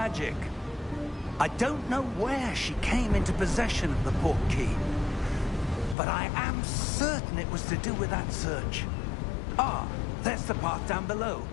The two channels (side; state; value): right; drops out; at 6.0 s